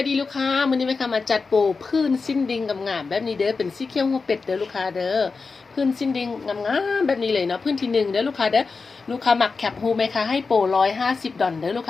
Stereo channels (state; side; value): quieter; right; 4.5 dB